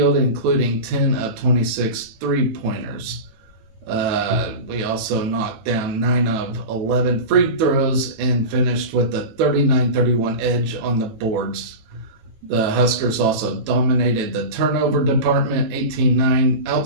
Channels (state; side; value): late; left; 18 ms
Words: including 10 of 26 three-pointers. We also knocked down 9 of 11 free throws and finished with a 39-31 edge on the boards. The Huskers also dominated the turnover department, 18-9,